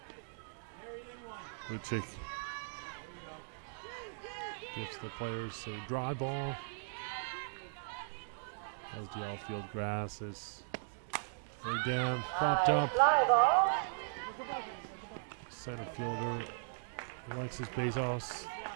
Lucic gives the players a dry ball as the outfield grass is very damp, popped up. Fly ball. Center fielder Alexis Bezos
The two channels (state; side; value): silent; left; digital silence